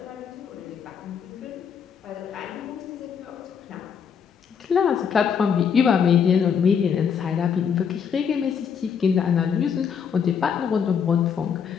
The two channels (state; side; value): quieter; right; 7.1 dB